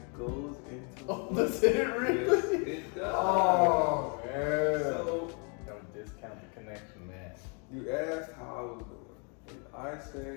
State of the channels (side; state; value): right; quieter; 36.7 dB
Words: goes into. Oh, does it really? Yes, it does. Oh, man. So Don't discount the connection, man. you asked how I was doing, and I